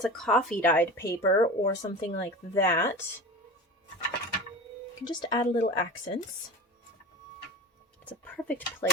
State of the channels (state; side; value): normal; both; correlation 0.32